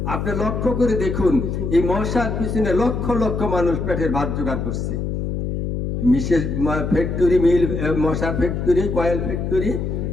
আপনি লক্ষ্য করে দেখুন, এই মশার পিছনে লক্ষ লক্ষ মানুষ পেটের ভাত জোগাড় করছে। মিসেস ফ্যাক্টরি, মিল, মশার ফ্যাক্টরি, কয়েল ফ্যাক্টরি,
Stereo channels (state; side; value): noise; left; hum, 2 dB below the sound